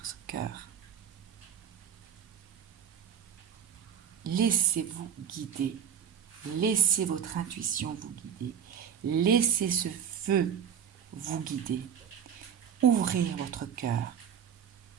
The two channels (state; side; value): quieter; left; 8.2 dB